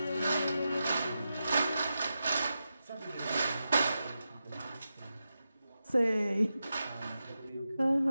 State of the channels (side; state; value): both; inverted; correlation -0.90